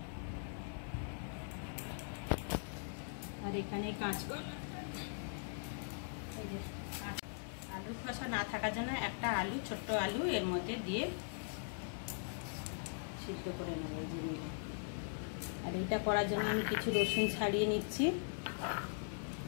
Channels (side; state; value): right; silent; digital silence